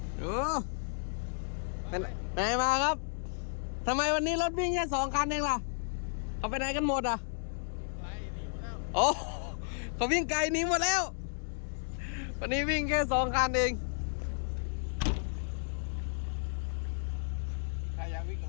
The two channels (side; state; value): right; silent; digital silence